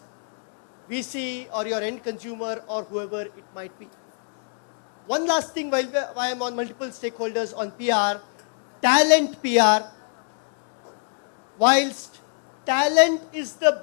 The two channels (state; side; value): silent; right; 61 dB below the other